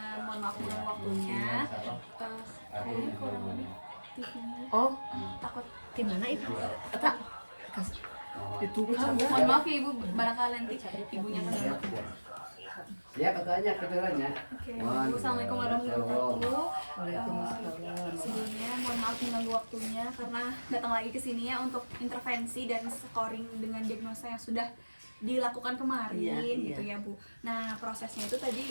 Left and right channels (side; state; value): both; inverted; correlation -1.00